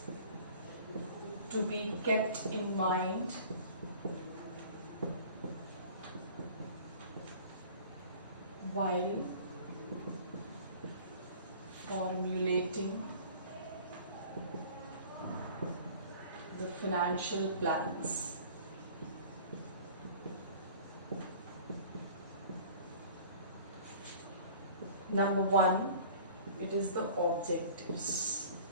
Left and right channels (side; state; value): both; inverted; correlation -0.46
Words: to be kept in mind while formulating the financial plans. Number one, it is the objectives.